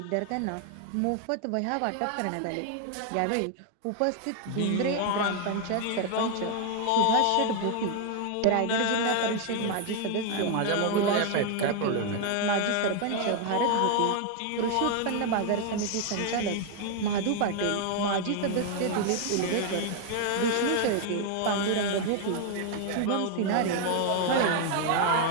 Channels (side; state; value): both; different; correlation 0.00